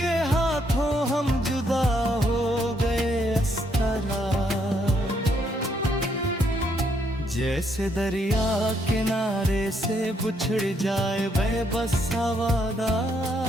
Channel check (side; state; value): both; normal; correlation 0.73